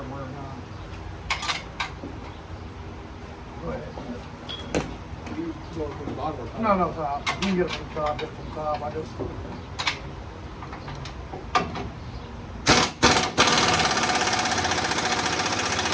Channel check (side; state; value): both; identical; correlation 1.00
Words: or not. Go ahead. You go from the bottom or top? No, top. You can get it from the top, get it from the top. I just...